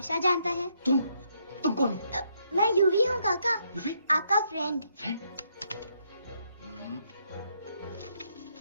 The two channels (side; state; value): both; inverted; correlation -0.74